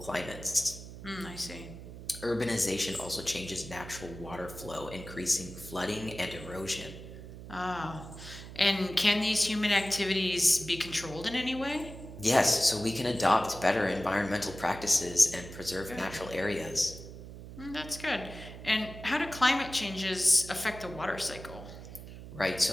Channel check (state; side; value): noise; right; hum, 13 dB below the sound